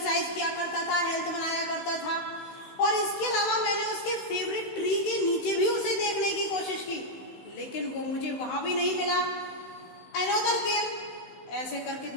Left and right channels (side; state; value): right; late; 16 ms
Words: किया करता था, हेल्थ बनाया करता था। और इसके अलावा मैंने उसके फेवरेट ट्री के नीचे भी उसे देखने की कोशिश की, लेकिन वो मुझे वहां भी नहीं मिला। अनदर केम, ऐसे करके